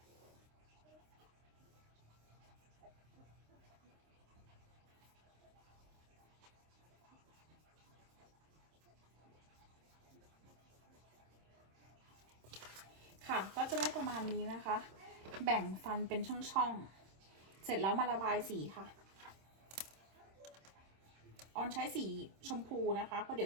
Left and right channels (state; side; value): late; left; 26 ms